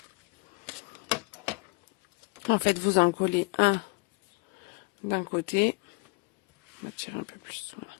En fait, vous en collez un d'un côté. On va tirer un peu plus. Voilà.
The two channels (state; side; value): quieter; right; 28.1 dB